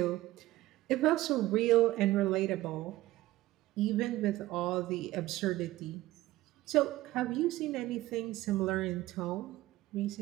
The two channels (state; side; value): quieter; left; 16.7 dB